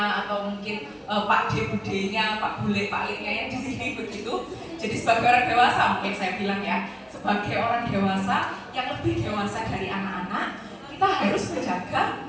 atau mungkin Pak D, Budenya, Pak Bule, Pak Liknya yang di sini begitu. Jadi sebagai orang dewasa, mungkin saya bilang ya, sebagai orang dewasa yang lebih dewasa dari anak-anak, kita harus menjaga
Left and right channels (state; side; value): identical; both; correlation 1.00